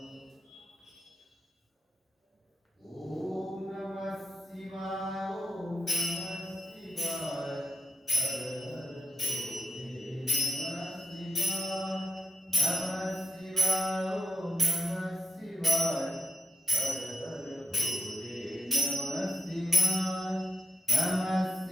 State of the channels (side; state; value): both; normal; correlation 0.86